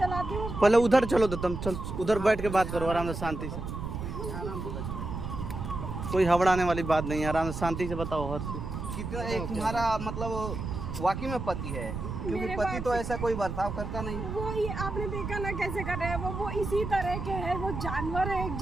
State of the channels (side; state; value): right; noise; rumble, 5 dB below the sound